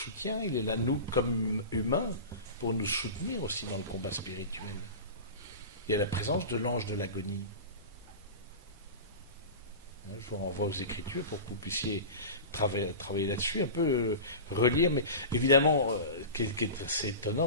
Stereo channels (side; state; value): both; inverted; correlation -0.30